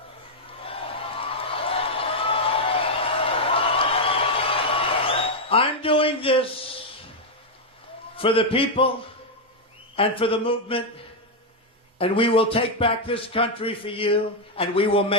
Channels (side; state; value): both; normal; correlation 0.00